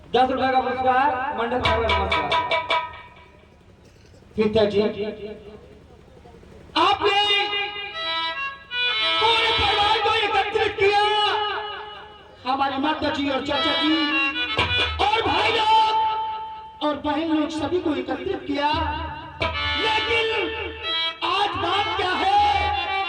10 रुपए का पुरस्कार मंडल का बड़ा नमस्कार। पिताजी आपने पूरे परिवार को एकत्रित किया, हमारी माता जी और चाचा जी और भाई लोग और बहन लोग सभी को एकत्रित किया, लेकिन आज बात क्या है?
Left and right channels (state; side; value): identical; both; correlation 1.00